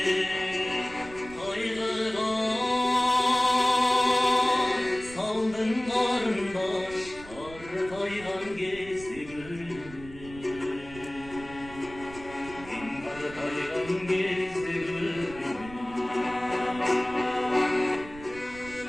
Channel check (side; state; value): right; noise; rumble, 17 dB below the sound